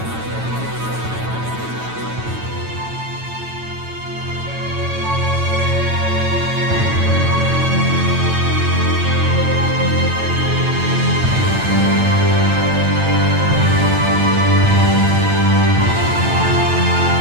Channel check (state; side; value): late; left; 9.0 ms